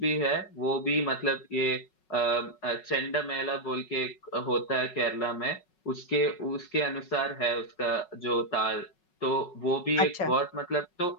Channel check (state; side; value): late; right; 5.4 ms